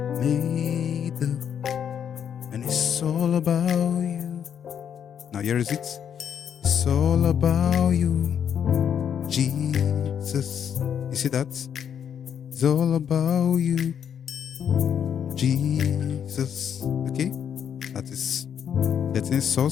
made, and it's all about you. Now here is it. It's all about you, Jesus. You see that? It's all about you, Jesus. Okay? That is getting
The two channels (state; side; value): quieter; right; 8.4 dB